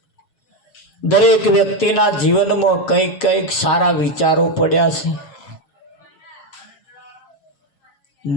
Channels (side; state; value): right; late; 7.3 ms